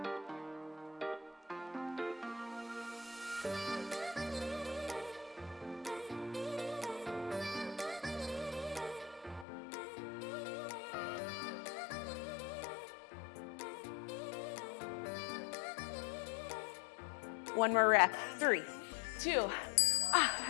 One more rep. 3, 2,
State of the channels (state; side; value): drops out; right; at 9.5 s